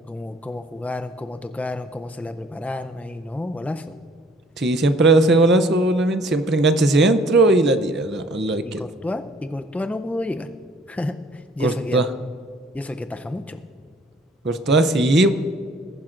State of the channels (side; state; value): both; normal; correlation 0.57